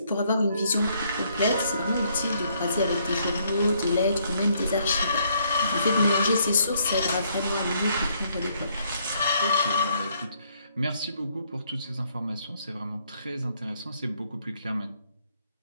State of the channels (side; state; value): both; inverted; correlation -0.69